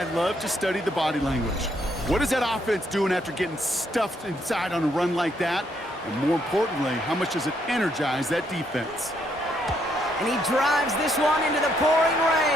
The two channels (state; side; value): normal; both; correlation 0.73